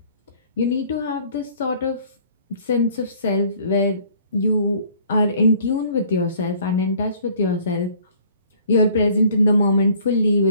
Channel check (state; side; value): inverted; both; correlation -0.55